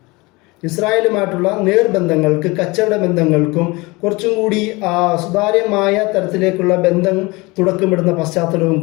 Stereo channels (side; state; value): right; quieter; 24.0 dB